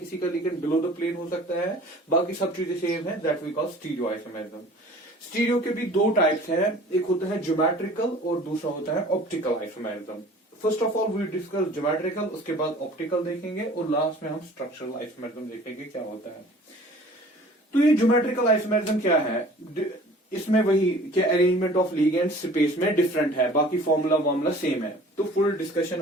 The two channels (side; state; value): both; normal; correlation 0.48